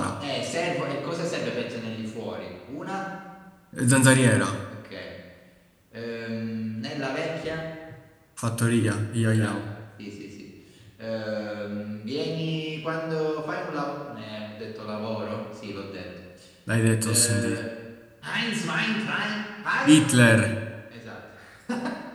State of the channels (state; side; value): identical; both; correlation 1.00